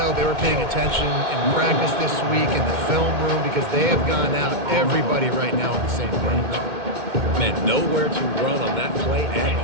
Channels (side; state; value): left; late; 2.1 ms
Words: they were paying attention in practice this week in the film room because they have gone out, everybody right now on the same page. Man, nowhere to run on that play at